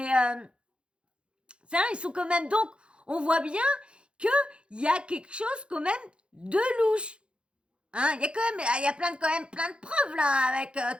vrai, ils sont quand même... Donc, on voit bien qu'il y a quelque chose quand même de louche. Hein, il y a quand même plein de preuves, là, avec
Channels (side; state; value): left; late; 0.056 ms